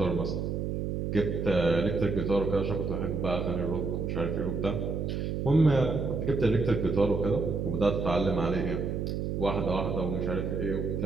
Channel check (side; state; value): right; noise; hum, 2 dB below the sound